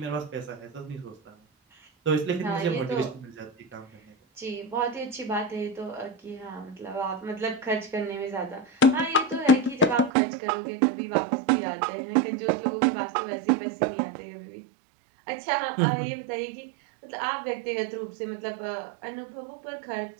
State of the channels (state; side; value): drops out; left; at 10.1 s